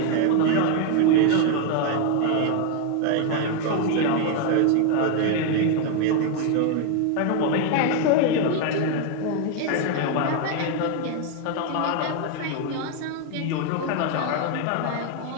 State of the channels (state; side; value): different; both; correlation 0.01